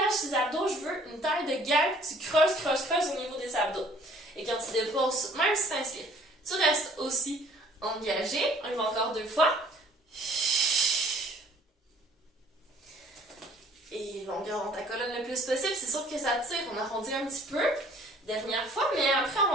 tes abdos. Je veux une taille de guêpe. Tu creuses, creuses, creuses au niveau des abdos. Et quand tu déposes, même si tu inspires, tu restes aussi engagé. On y va encore 2 fois. Et longueur dans ta colonne le plus possible. C'est sûr que ça tire. On arrondit un petit peu. Dernière fois, mais après, on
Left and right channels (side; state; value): both; normal; correlation 0.55